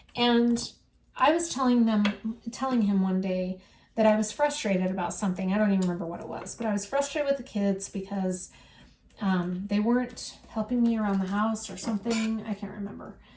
And I was telling him one day, that I was frustrated about something. I don't even remember what it was, but I was frustrated with the kids because they weren't helping me around the house or something. I can't remember.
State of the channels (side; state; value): both; identical; correlation 1.00